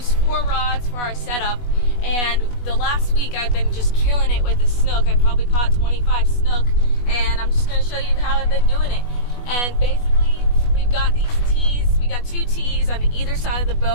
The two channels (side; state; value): right; late; 20 ms